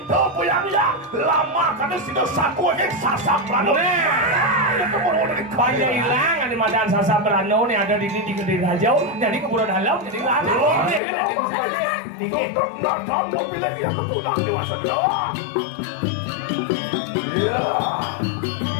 to puyang-yang lama kada sida saku yang sasak rano. Itu mau di Banyak hilang ada madan sasa berano nih ada di Kediri Rajau jadi keburu dalam jadi lana. Tutup nadam lo pilih yang ketulang dewasa doa. Ya.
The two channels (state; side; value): drops out; right; at 11.0 s